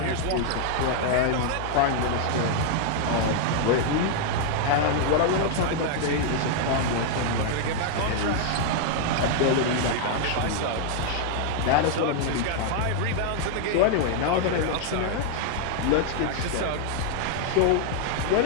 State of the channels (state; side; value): different; both; correlation 0.00